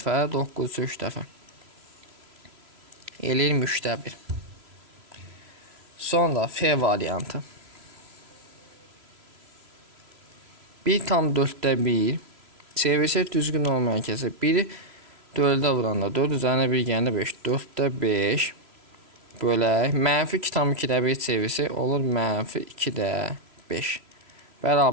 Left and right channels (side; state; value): left; late; 3.0 ms